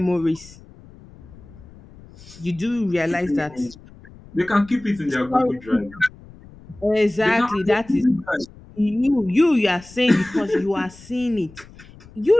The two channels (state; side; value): noise; left; rumble, 21 dB below the sound